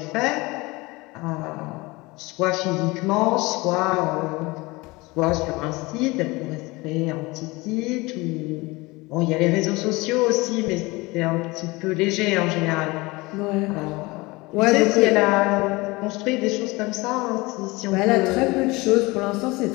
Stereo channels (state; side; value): quieter; right; 23.1 dB